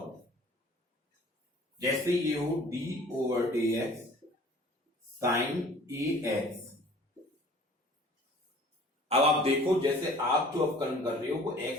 जैसे ये हो d over D x sine A X. अब आप देखो, जैसे आप जो अवकलन कर रहे हो वो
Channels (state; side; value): normal; both; correlation 0.50